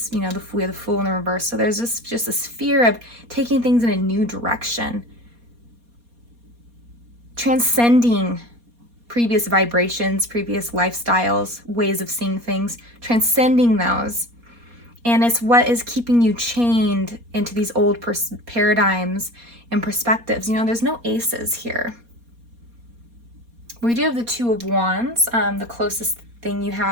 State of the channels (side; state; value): left; late; 4.2 ms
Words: you know, we have the Fool in the reverse. So there's just this fear of taking things in a new direction, transcending previous vibrations, previous lifestyles, ways of seeing things, transcending those. And it's what is keeping you chained into these old paradigms and perspectives. You know, there's no aces here. We do have the Two of Wands, the closest thing you